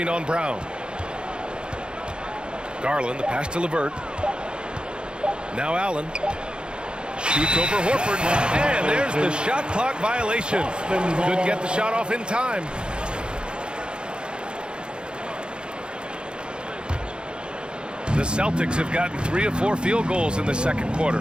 on Brown. Garland, the pass to LeVert. Now Allen. Shoots over Horford. And there's the shot clock violation. Couldn't get the shot off in time. The Celtics have gotten 3 of 4 field goals in the second quarter.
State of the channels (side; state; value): left; late; 0.052 ms